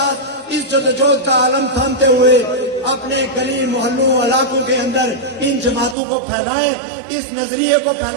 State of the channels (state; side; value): drops out; left; at 6.0 s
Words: اس جدوجہد کا عالم تھامتے ہوئے اپنے گلی محلوں علاقوں کے اندر ان جماعتوں کو پھیلائیں، اس نظریے کو